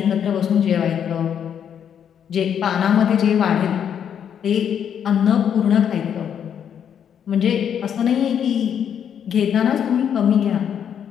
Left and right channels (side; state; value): right; quieter; 8.6 dB